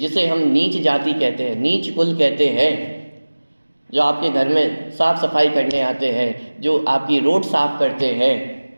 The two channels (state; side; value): inverted; both; correlation -1.00